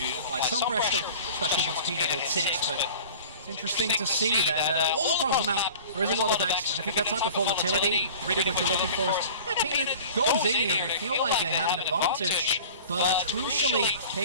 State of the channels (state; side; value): inverted; both; correlation -0.42